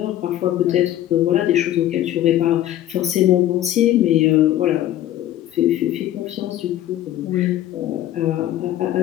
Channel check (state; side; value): quieter; right; 12.8 dB